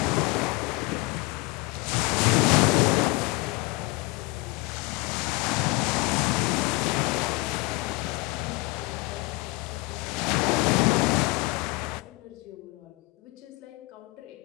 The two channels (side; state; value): right; quieter; 22.7 dB